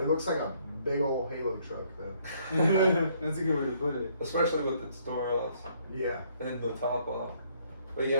looks like a big old Halo truck though. That's a good way to put it. Especially with its door off Yeah. and the top off. But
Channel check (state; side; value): inverted; both; correlation -0.66